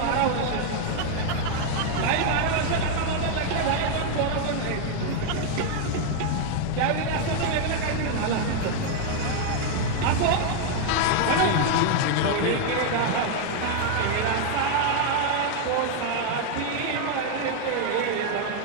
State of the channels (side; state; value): both; different; correlation 0.00